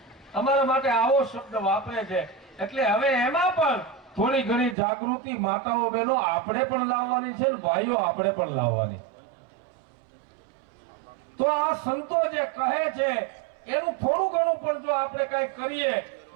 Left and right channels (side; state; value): left; drops out; at 4.8 s